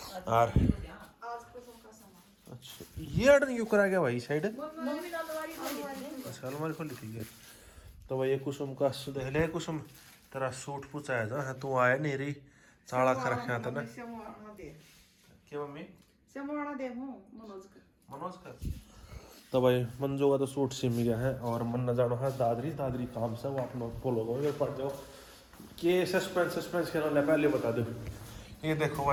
और अच्छा ये ऑर्डर क्यों करा गया भाई साइड? अच्छा अलमारी खोली थी ये तो भाई ये कुसुम का देख ले। कुसुम तेरा सूट पूछा है था तू आया नहीं रही साड़ा खा रखा था ना क्या मम्मी मनोज का। तो भाई मंजू का तो सूट सिम गया है और मन न जानो है दादरी दादरी काम से वो आप लोग फॉलो करो पड़ जाओ कि सस्पेंस के ना पहले बता दो। ये देखो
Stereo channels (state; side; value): identical; both; correlation 1.00